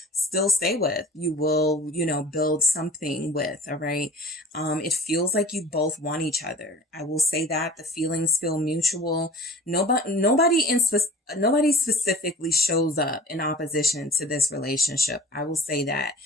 still stay with. You will, you know, build something with. All right. It feels like you both want each other. I will say that the feelings feel mutual. Nobody specifically shows up in opposition to this relationship. I will say that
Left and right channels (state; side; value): normal; both; correlation 0.42